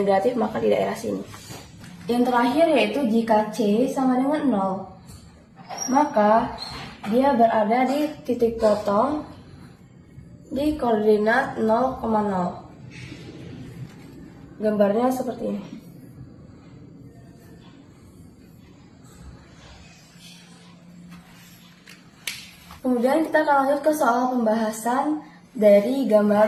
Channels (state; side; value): identical; both; correlation 1.00